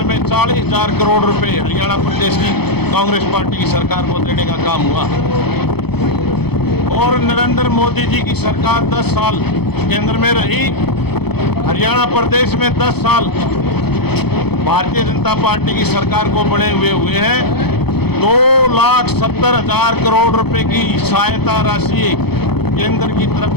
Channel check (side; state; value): right; late; 0.97 ms